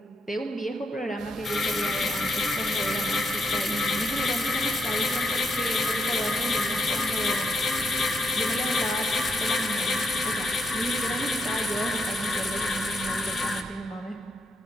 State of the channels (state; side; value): normal; both; correlation 0.79